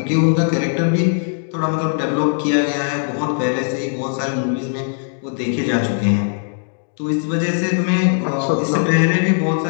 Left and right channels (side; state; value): right; silent; digital silence